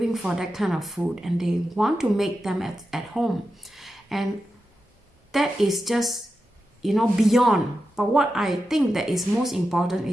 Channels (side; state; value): both; normal; correlation 0.90